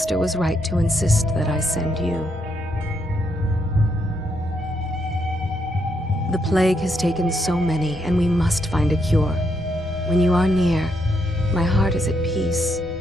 was right to insist that I send you. The plague has taken so many, and we must find a cure. When you are near, my heart is at peace.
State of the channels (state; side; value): normal; both; correlation 0.77